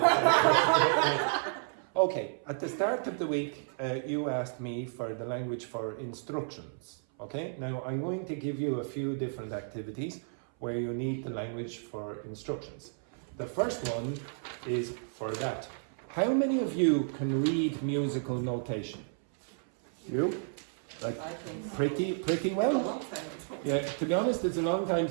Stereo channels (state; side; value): silent; left; 56 dB below the other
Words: Okay, at the start of the week, you asked me for the language for instructions. Okay, now I'm going to give you a few different activities where you need the language for instructions. The first one is for that. How many of you can read musical notation? You? Like I think so. pretty A well? long time ago. Yeah, to be honest, it's a long time